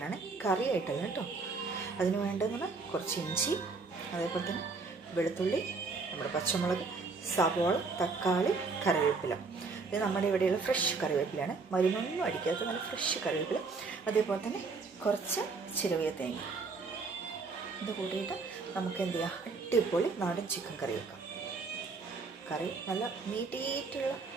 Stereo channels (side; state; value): left; quieter; 4.3 dB